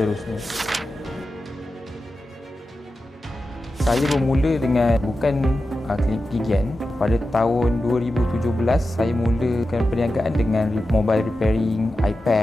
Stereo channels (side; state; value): both; normal; correlation 0.92